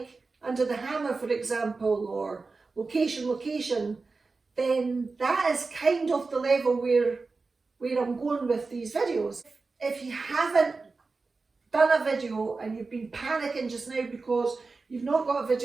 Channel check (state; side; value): quieter; left; 4.0 dB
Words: Under the Hammer, for example, or Location, then that is kind of the level where I'm going with these videos. If you haven't done a video and you've been panicking just now because you've not got a